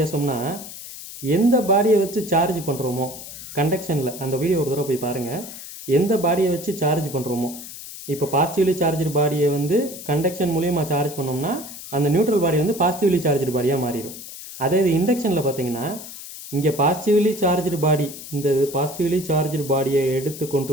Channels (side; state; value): left; noise; hiss, 13 dB below the sound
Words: எந்த பாடியை வச்சு சார்ஜ் பண்ணுறோமோ கண்டக்ஷனில், அந்த வீடியோ ஒரு தடவை போய் பாருங்கள், எந்த பாடியை வச்சு சார்ஜ் பண்ணுறோமோ, இப்போ பாசிட்டிவ்லி சார்ஜ்டு பாடியை கண்டக்ஷன் மூலியமாக சார்ஜ் பண்ணோம்னா அந்த நியூட்ரல் பாடி பாசிட்டிவ்லி சார்ஜ்டு பாடியாக மாறிடும். அதே இது இண்டக்ஷனில் பார்த்தீங்கன்னா, இங்கே பாசிட்டிவ்லி சார்ஜ்டு பாடி, இந்த பாசிட்டிவ்லி சார்ஜ்டு பாடியை எடுத்து